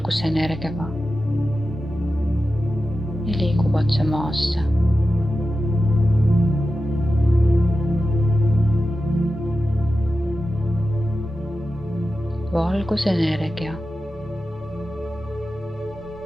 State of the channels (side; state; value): both; normal; correlation 0.92